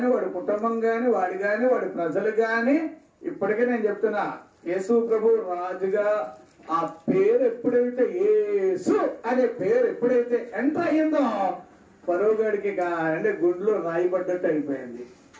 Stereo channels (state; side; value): identical; both; correlation 1.00